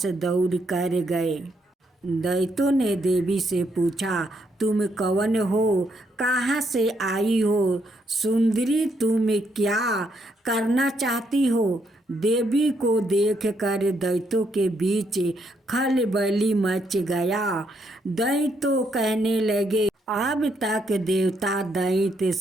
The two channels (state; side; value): normal; both; correlation 0.75